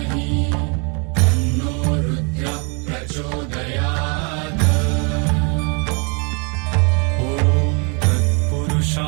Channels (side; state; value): left; quieter; 34.4 dB